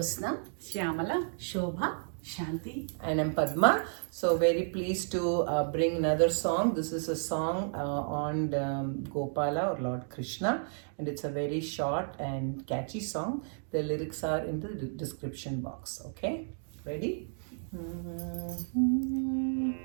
Shyamala, Shobha, Shanti. and I'm Padma. So very pleased to bring another song. This is a song on Gopala or Lord Krishna, and it's a very short and catchy song. The lyrics are in the description box. Okay, ready?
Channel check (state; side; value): silent; left; digital silence